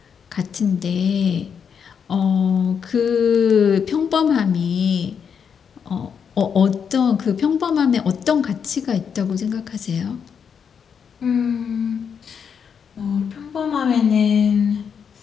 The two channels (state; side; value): quieter; right; 7.0 dB